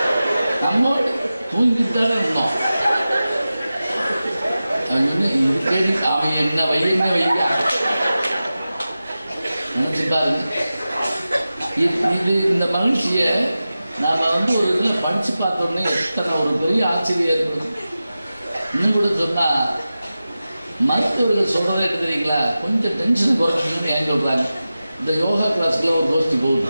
நம்மோட தூங்கிட்டாலே இருந்தோம். அவன் என்ன வைங்க நினைச்சு பாருங்க. இது இந்த மகிழ்ச்சியை நாம் வந்து ஒரு இதில் படித்து பார்த்தோன்னே எத்தனை ஒரு பெரிய ஆச்சரியம் ஏற்படும். இன்னும் கூட சொன்னால் மருத்துவர்கள் சொல்கிறதே என்ன தெரியுங்களா, கொஞ்சம் டென்ஷன் குறைக்கணும்னு ஏன் சொல்கிறாங்க. இந்த யோகா கிளாஸுக்குள்ள ஒரு கோஷ்டி போகுது,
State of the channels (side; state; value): both; inverted; correlation -0.94